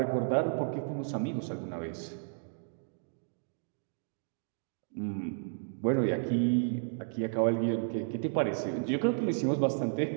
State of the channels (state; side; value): silent; left; digital silence